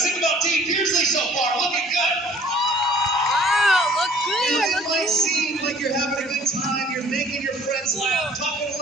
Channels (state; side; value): normal; both; correlation 0.53